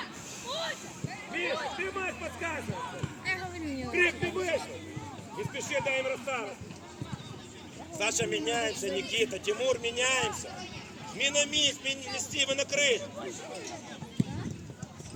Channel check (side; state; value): both; identical; correlation 1.00